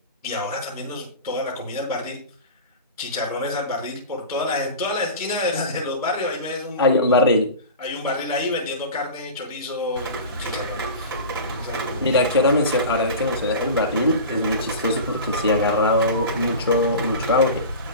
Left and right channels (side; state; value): both; inverted; correlation -0.33